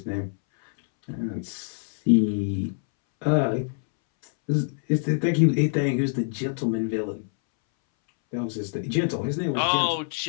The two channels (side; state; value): right; silent; 61 dB below the other